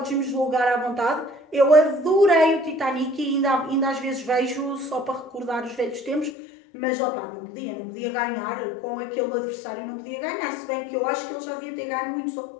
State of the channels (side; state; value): right; drops out; at 6.4 s